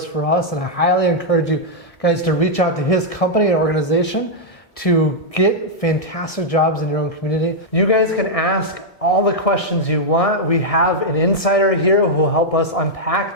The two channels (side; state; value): right; late; 1.7 ms